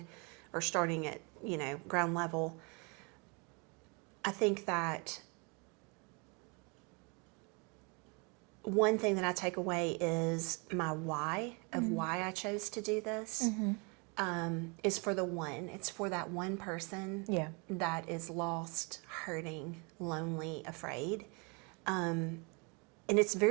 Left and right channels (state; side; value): quieter; left; 32.0 dB